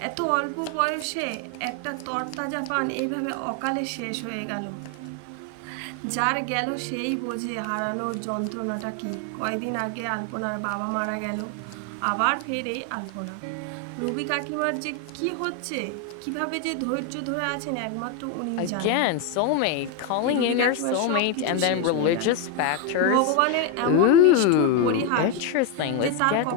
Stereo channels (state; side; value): different; both; correlation 0.01